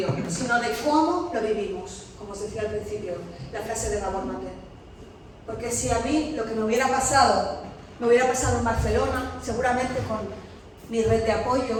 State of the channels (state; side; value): identical; both; correlation 1.00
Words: sino de cómo lo vivimos, como os decía al principio, la frase de Gabor Maté. Porque si a mí lo que me hubiera pasado en Barcelona, seguramente con mi red de apoyo,